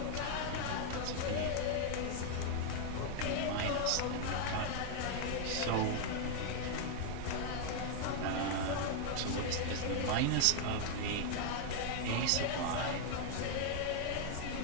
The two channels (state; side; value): different; both; correlation 0.00